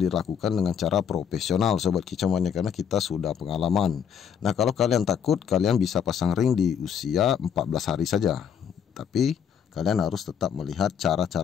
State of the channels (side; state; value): right; quieter; 7.9 dB